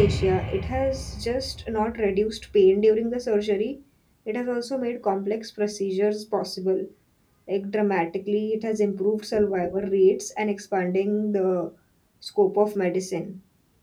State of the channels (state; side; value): identical; both; correlation 1.00